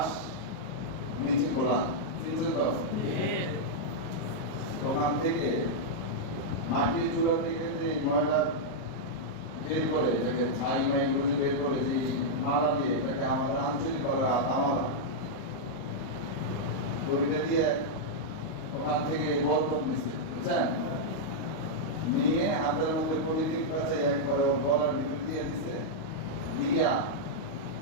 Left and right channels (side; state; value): right; late; 38 ms